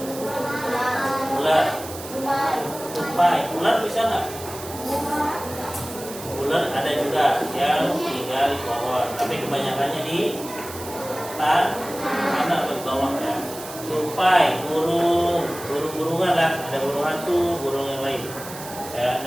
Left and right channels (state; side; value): noise; right; hiss, 13 dB below the sound